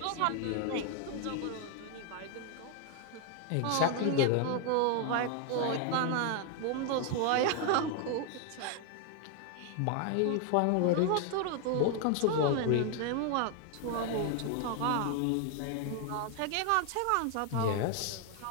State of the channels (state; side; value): different; both; correlation 0.00